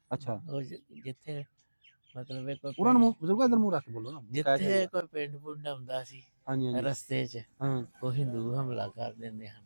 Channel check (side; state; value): both; inverted; correlation -1.00